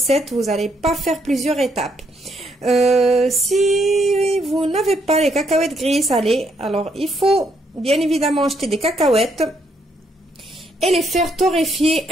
Vous n'allez pas faire plusieurs étapes. Si vous n'avez pas les cacahuètes grillées salées, alors il faut bien évidemment acheter des cacahuètes et les faire torréfier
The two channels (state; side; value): normal; both; correlation 0.74